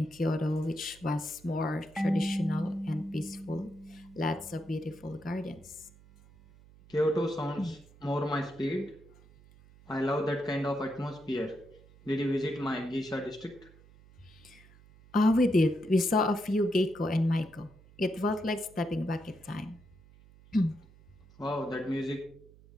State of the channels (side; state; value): right; noise; hum, 24 dB below the sound